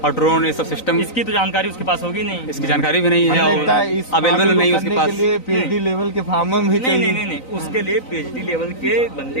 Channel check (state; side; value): late; right; 3.9 ms